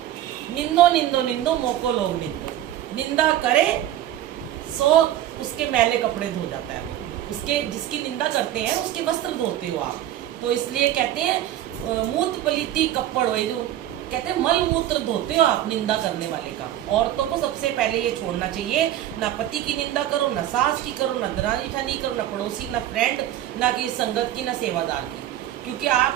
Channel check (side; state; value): left; quieter; 12.6 dB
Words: निंदो निंदो निंदो मोको लोग निंदो। निंदा करे सो उसके मैले कपड़े धो जाता है। उसके जिसकी निंदा करते हैं उसके वस्त्र धोते हो आप। तो इसलिए कहते हैं मूत पलीती कपड़ हो, जो कहते हैं मल मूत्र धोते हो आप निंदा करने वाले का। औरतों को सबसे पहले ये छोड़ना चाहिए, ना पति की निंदा करो, ना सास की करो, ना दरानी ठानी करो, ना पड़ोसी, ना फ्रेंड, ना कि संगत की, ना सेवादार की, क्योंकि